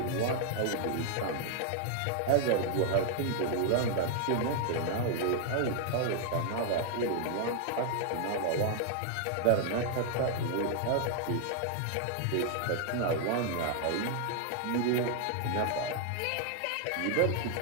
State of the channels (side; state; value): both; different; correlation 0.00